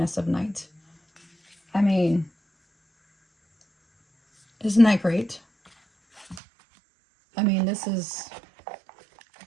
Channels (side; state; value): left; drops out; at 6.4 s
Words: of night. I mean, isn't that great? I mean, this is